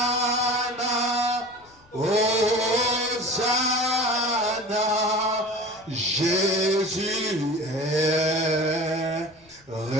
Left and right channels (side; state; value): left; noise; rumble, 30 dB below the sound